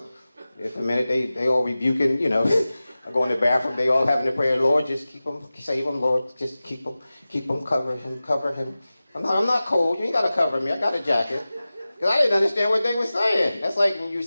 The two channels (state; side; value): inverted; both; correlation -0.96